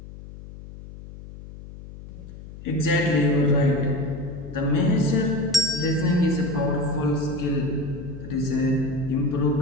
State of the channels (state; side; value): noise; left; hum, 15 dB below the sound